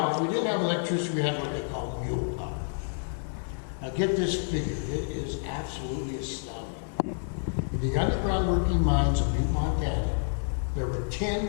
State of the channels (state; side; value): silent; right; 58 dB below the other